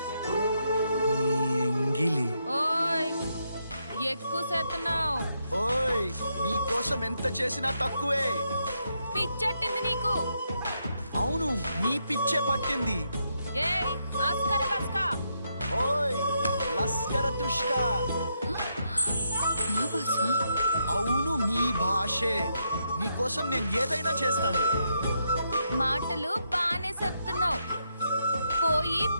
నీ ఎంగిలి. ఓయ్, ఎక్కువ చేస్తున్నావు. ఓయ్, నీ కోసం ఎంత చేసినా తక్కువే. పిచ్చట్టింది నీకు. అవును, నీ పిచ్చే పట్టింది. ఏయ్, అస్కర బస్కా. ఓయ్, లస్కర తుష్కా. నా భాష? అవును, మీ భాషే. నీ కోసం నేను ఏదైనా చేస్తాను. మాటలు బానే చెప్తున్నావు. పోయి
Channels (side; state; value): both; inverted; correlation -0.79